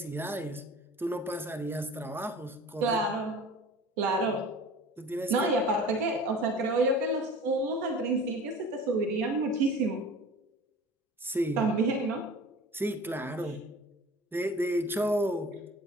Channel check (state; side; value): normal; both; correlation 0.41